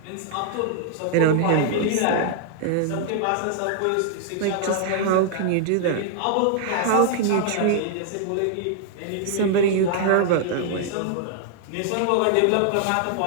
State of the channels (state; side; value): different; both; correlation 0.00